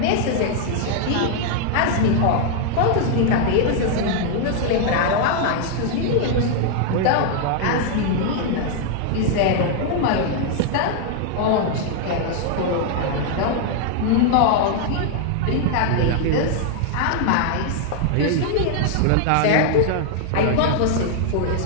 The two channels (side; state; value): both; different; correlation 0.00